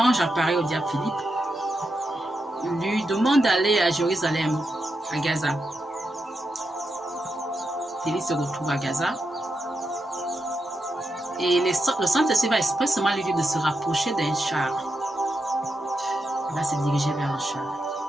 apparaît au diacre Philippe, lui demande d'aller à Jérusalem, à Gaza. Philippe se retrouve à Gaza. Et le Saint-Esprit va expressément lui dire de se rapprocher d'un char. Il va se diriger vers le char.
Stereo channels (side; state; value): both; normal; correlation 0.86